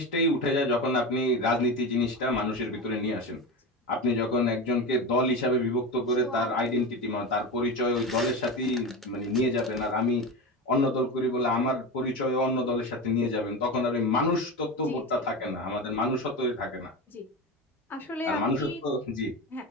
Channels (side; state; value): both; normal; correlation 0.23